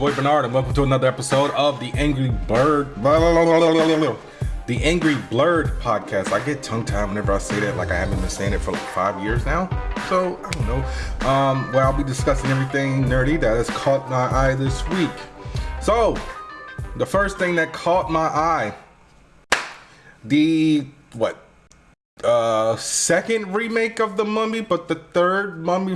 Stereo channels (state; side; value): identical; both; correlation 1.00